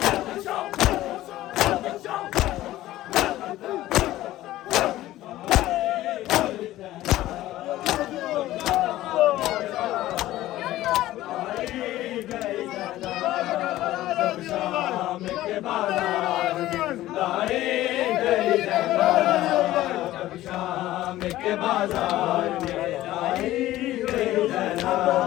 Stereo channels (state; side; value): quieter; right; 15.3 dB